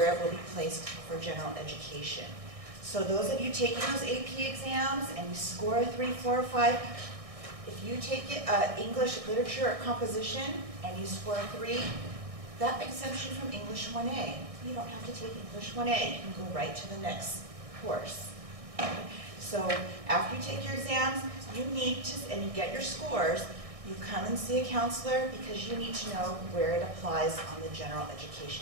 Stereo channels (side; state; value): left; late; 1.6 ms